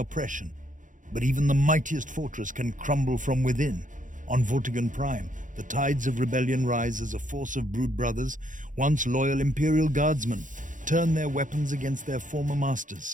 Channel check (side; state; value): left; late; 0.37 ms